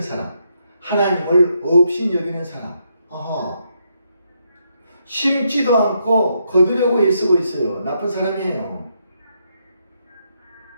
하나님을 업신여기는 사람. 심지도 않고 거두려고 애쓰고 있어요. 나쁜 사람이에요.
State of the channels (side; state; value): both; inverted; correlation -0.78